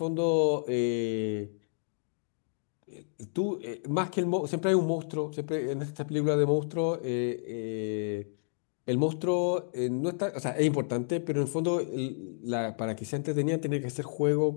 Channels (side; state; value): right; silent; digital silence